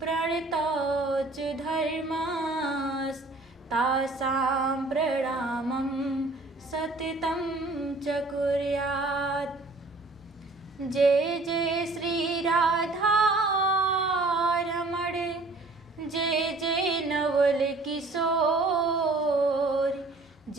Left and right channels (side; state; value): left; quieter; 3.1 dB